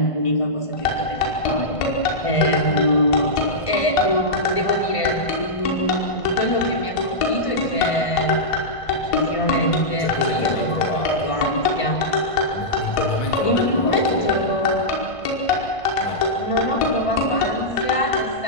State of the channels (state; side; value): late; right; 1.5 ms